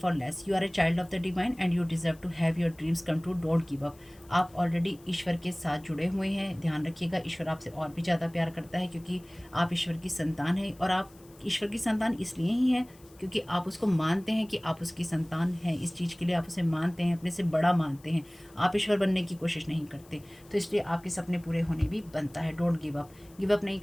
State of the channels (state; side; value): noise; left; hiss, 27 dB below the sound